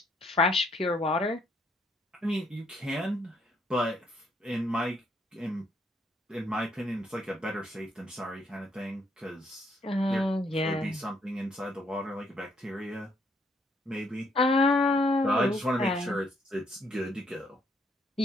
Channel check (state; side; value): normal; both; correlation 0.70